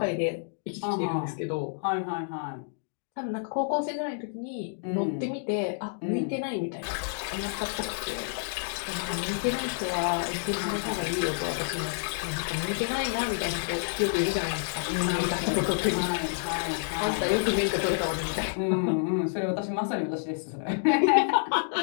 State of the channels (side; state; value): right; silent; digital silence